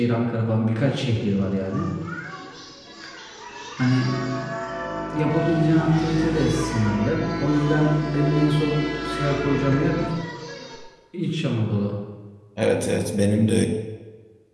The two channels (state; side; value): identical; both; correlation 1.00